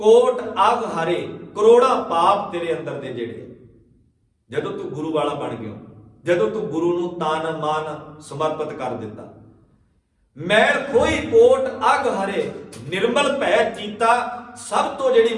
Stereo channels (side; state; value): both; identical; correlation 1.00